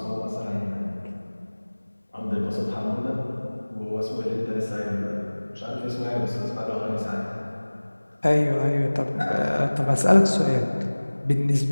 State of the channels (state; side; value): inverted; both; correlation -1.00